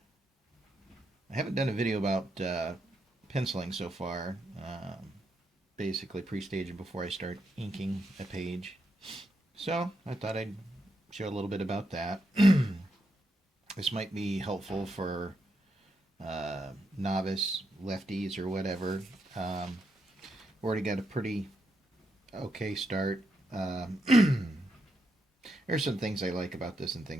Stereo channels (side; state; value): both; normal; correlation 0.82